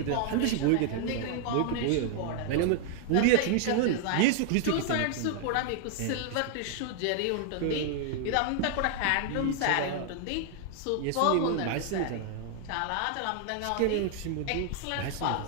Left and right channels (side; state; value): both; different; correlation 0.00